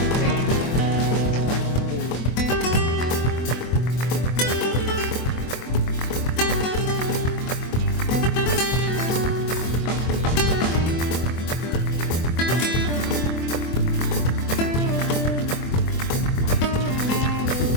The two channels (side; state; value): right; late; 24 ms